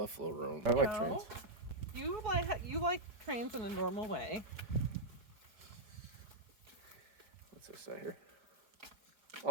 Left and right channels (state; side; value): late; left; 5.0 ms